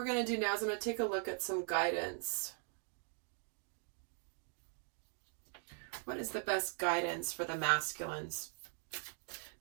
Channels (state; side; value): silent; left; 51 dB below the other